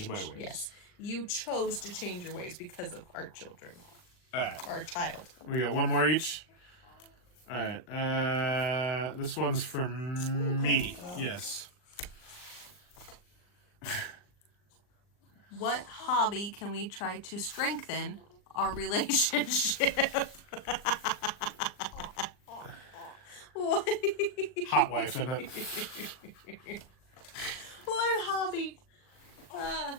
my ways. Yes. You chose to change your ways because of our children. All right. Our child. We got one more each. All right. This one's from me. Yes. What hobby can we try to strengthen our relationship? What? Hot wife, isn't it? What hobby?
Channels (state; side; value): late; right; 39 ms